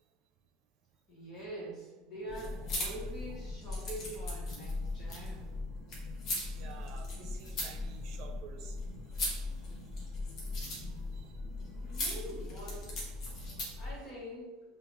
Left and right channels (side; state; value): both; normal; correlation 0.59